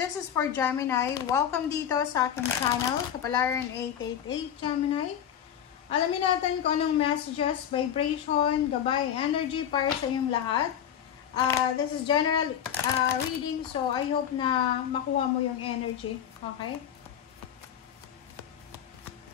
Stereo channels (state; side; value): quieter; right; 9.5 dB